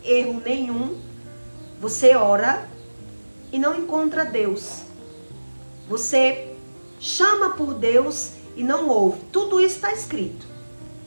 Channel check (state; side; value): inverted; both; correlation -1.00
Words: erro nenhum, você ora e não encontra Deus. Você chama por Deus e não ouve. Tudo isso está escrito.